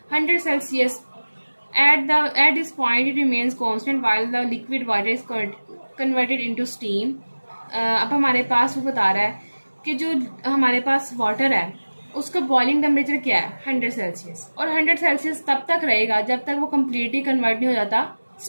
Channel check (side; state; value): both; inverted; correlation -1.00